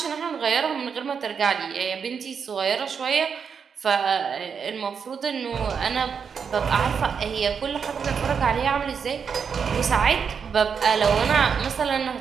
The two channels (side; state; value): left; quieter; 6.5 dB